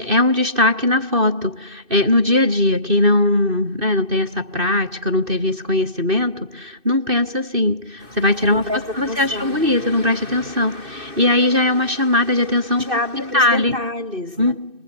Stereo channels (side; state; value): left; late; 2.6 ms